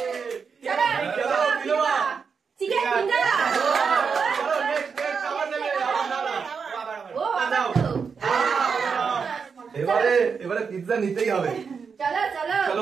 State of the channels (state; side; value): quieter; left; 5.8 dB